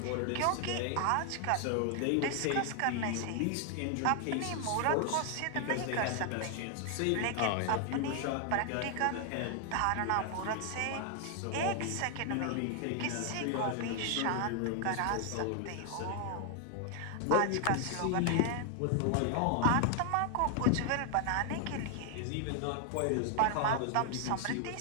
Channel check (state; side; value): different; both; correlation 0.00